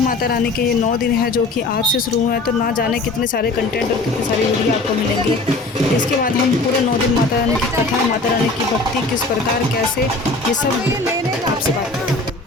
रानी के ये 9 दिन है जो कि आज से शुरू हुए हैं, तो ना जाने कितने सारे कंटेंट और कितनी सारी वीडियो आपको मिलेंगे। इसके बाद हम पूरे 9 दिन माता रानी की कथा, माता रानी की भक्ति किस प्रकार, कैसे, ये सब आपसे बात करेंगे।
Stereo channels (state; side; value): quieter; right; 3.2 dB